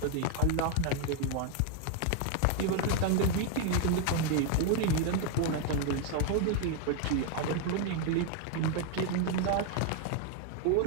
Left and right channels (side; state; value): both; different; correlation 0.01